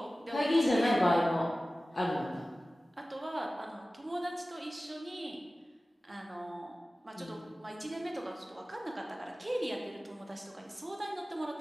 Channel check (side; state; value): both; normal; correlation 0.96